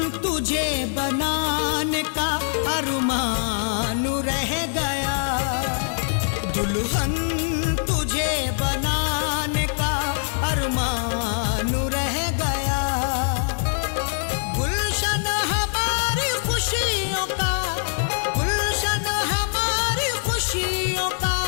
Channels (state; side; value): silent; right; digital silence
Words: तुझे बनाने का अरमान रह गया। दुल्हन तुझे बनाने का अरमान रह गया। गुलशन हमारी खुशियों का, गुलशन हमारी खुशियों का